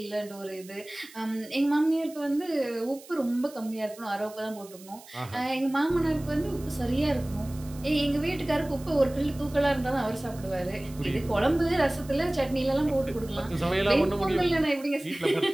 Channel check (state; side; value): noise; right; hiss, 20 dB below the sound